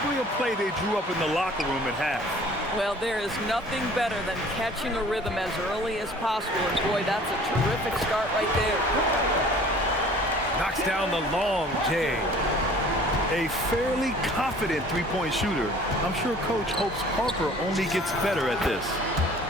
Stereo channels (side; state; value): both; normal; correlation 0.50